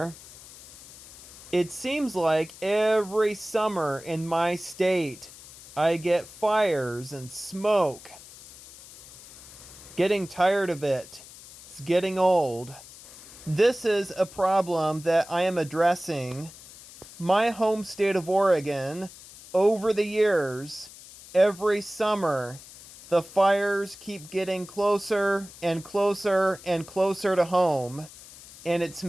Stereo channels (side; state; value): left; noise; hiss, 18 dB below the sound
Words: It seems like every summer in my state, I get fires and smoke. Getting tired of it. It's getting old. This is a problem that I am addressing. My home state of Oregon, over the years, every summer, the fires keep getting closer and closer and closer to home, and it's